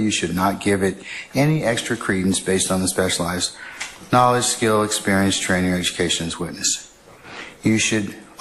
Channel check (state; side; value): identical; both; correlation 1.00